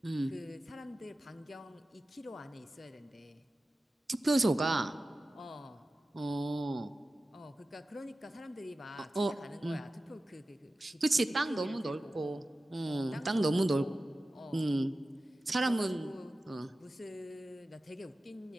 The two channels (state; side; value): normal; both; correlation 0.95